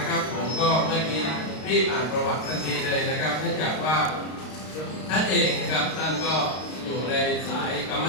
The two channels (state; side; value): late; right; 32 ms